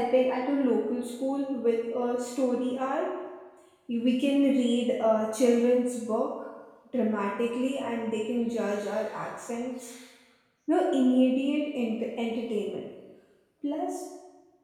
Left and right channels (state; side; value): identical; both; correlation 1.00